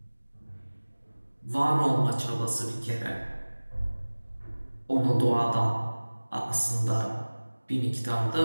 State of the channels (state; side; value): inverted; both; correlation -1.00